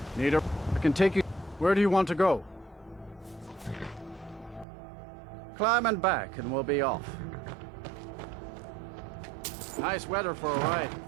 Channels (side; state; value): left; drops out; at 4.7 s